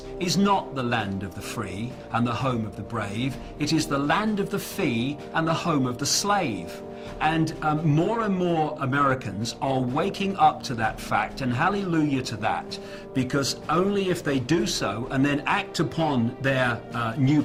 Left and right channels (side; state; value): both; identical; correlation 1.00